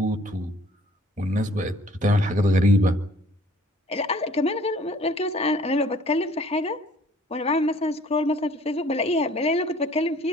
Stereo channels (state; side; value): normal; both; correlation 0.56